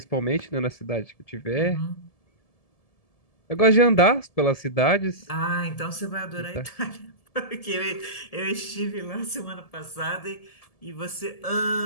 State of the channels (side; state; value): right; late; 1.7 ms